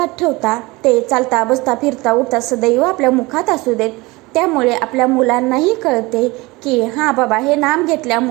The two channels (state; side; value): quieter; left; 22.8 dB